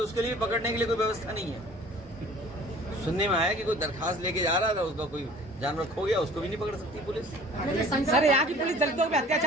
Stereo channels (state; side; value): normal; both; correlation 0.48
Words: उसके लिए पकड़ने के लिए कोई व्यवस्था नहीं है। सुनने में आया कि कोई दरखास्त लेके जा रहा था, उसका कोई जानवर खो गया, उसको भी नहीं पकड़ सकती पुलिस। सर यहाँ की पुलिस दलितों पे